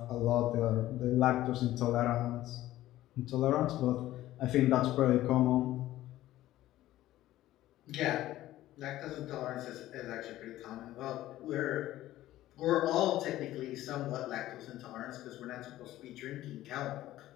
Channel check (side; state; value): right; quieter; 14.8 dB